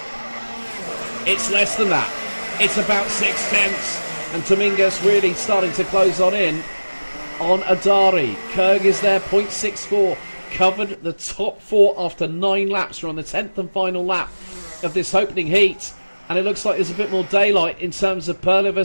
It's less than that. It's about 6/10. And Dominguez really starting to close in on Adari. Kerg is there, 0.64. Covered the top 4 after 9 laps. We're on the 10th and final lap of this opening heat, and it looks like there's a bit more daylight in terms of Perla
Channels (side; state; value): both; inverted; correlation -1.00